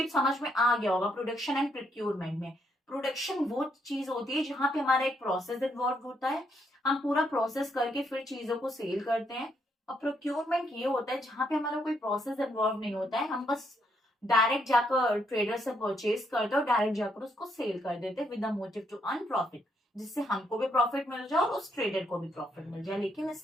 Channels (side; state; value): both; normal; correlation 0.75